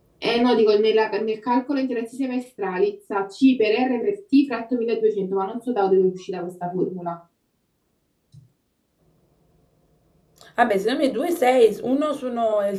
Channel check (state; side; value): identical; both; correlation 1.00